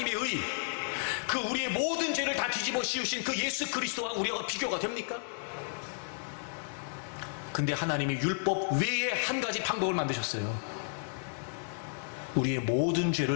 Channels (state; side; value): silent; right; 56 dB below the other